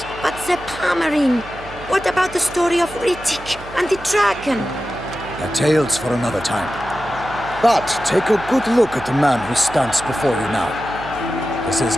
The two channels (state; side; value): noise; right; hum, 17 dB below the sound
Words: But the Pomerine, what about the story of Rittik and the dragon? They're tales for another time. But take a good look at the man who stands before you now. This is